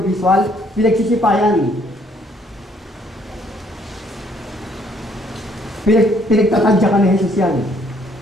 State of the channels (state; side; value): normal; both; correlation 0.65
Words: visual, pinagsisipayan. Pinagtatadyakan ni Jesus yan.